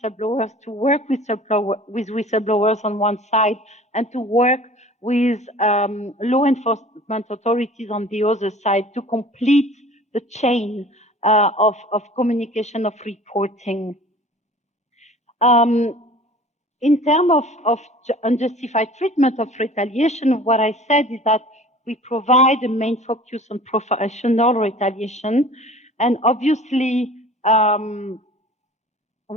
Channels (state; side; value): normal; both; correlation 0.45